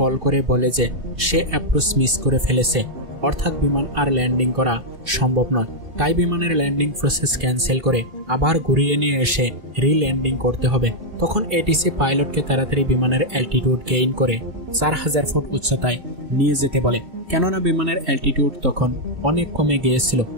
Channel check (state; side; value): late; left; 2.7 ms